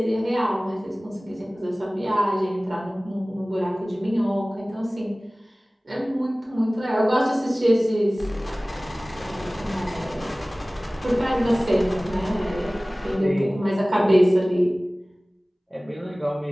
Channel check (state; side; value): normal; both; correlation 0.98